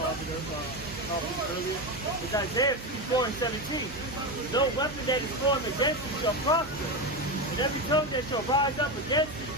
It's Isaiah 54 and 17. No weapon that is formed against you shall prosper, and every tongue that shall rise up against you in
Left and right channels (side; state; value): right; noise; hum, 14 dB below the sound